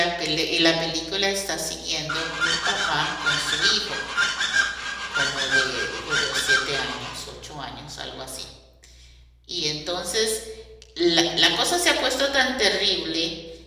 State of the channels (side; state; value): both; identical; correlation 1.00